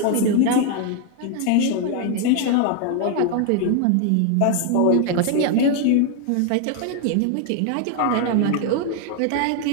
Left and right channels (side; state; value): both; different; correlation 0.01